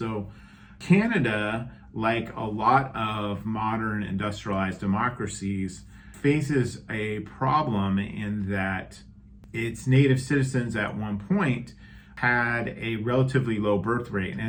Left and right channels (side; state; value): both; identical; correlation 1.00